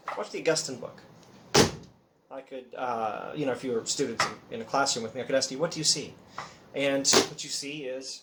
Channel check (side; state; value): both; identical; correlation 1.00